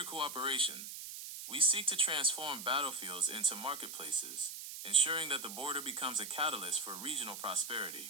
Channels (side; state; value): right; noise; hiss, 9 dB below the sound